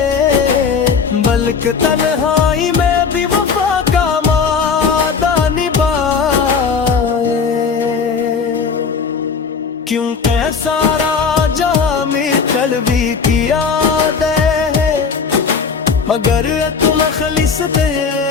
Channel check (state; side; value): quieter; right; 5.6 dB